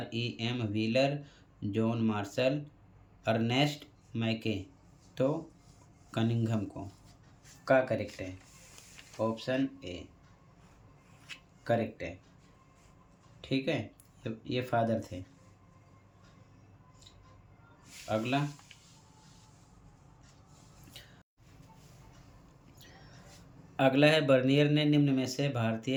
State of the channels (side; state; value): both; identical; correlation 1.00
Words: Wheeler, John Marshall, Ernest Mackay. तो कनिंघम को का करेक्ट है, ऑप्शन ए करेक्ट है। ठीक है, ये फादर थे। अगला, अगला है, बर्नियर ने निम्न में से